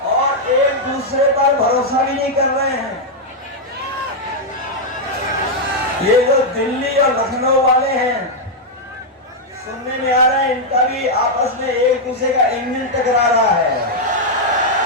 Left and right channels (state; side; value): normal; both; correlation -0.02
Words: और एक दूसरे पर भरोसा भी नहीं कर रहे हैं। ये जो दिल्ली और लखनऊ वाले हैं, सुनने में आ रहा है इनका भी आपस में एक दूसरे का इंजन टकरा रहा है।